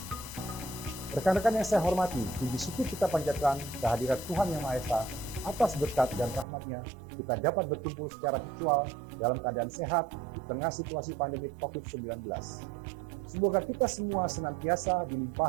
Rekan-rekan yang saya hormati, puji syukur kita panjatkan kehadirat Tuhan Yang Maha Esa. Atas berkat dan rahmat-Nya, kita dapat berkumpul secara virtual dalam keadaan sehat di tengah situasi pandemi COVID-19. Semoga kita semua senantiasa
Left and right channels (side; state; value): left; drops out; at 6.5 s